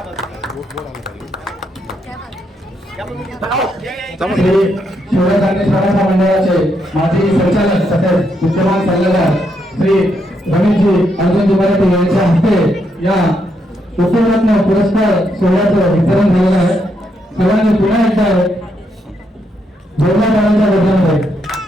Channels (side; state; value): both; normal; correlation 0.78